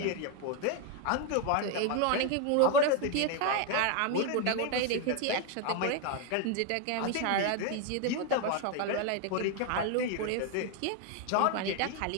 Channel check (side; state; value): both; different; correlation 0.01